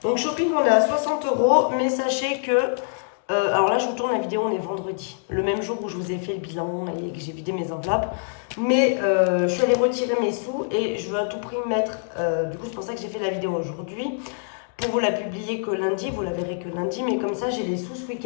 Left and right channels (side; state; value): right; silent; digital silence